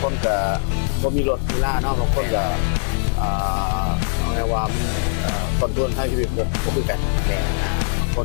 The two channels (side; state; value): right; silent; 57 dB below the other